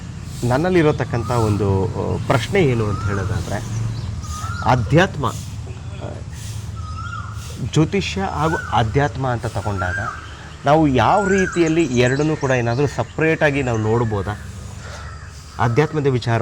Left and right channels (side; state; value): both; identical; correlation 1.00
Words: ನನ್ನಲ್ಲಿರತಕ್ಕಂಥ ಒಂದು ಪ್ರಶ್ನೆ ಏನು ಅಂತ ಹೇಳೋದಾದರೆ, ಆಧ್ಯಾತ್ಮ, ಜ್ಯೋತಿಷ್ಯ ಹಾಗೂ ಆಧ್ಯಾತ್ಮ ಅಂತ ತಗೊಂಡಾಗ ನಾವು ಯಾವ ರೀತಿಯಲ್ಲಿ ಎರಡನ್ನೂ ಕೂಡ ಏನಾದರೂ ಸಪ್ರೇಟಾಗಿ ನಾವು ನೋಡ್ಬೋದಾ? ಆಧ್ಯಾತ್ಮದ